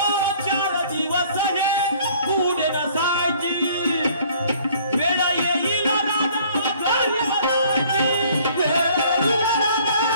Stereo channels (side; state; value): both; inverted; correlation -0.56